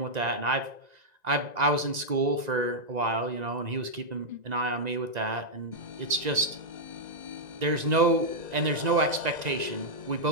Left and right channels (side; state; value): left; late; 1.9 ms